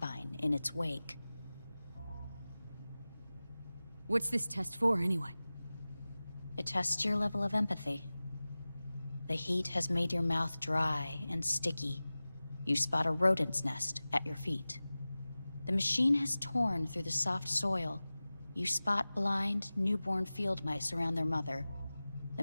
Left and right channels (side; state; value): both; inverted; correlation -0.97